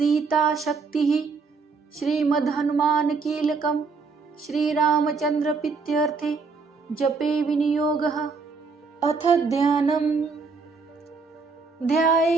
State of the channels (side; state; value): left; quieter; 4.6 dB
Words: शक्तिः श्रीमद् हनुमान कीलकम् श्रीरामचंद्र प्रीत्यर्थे जपे विनियोगः। अथ ध्यानम्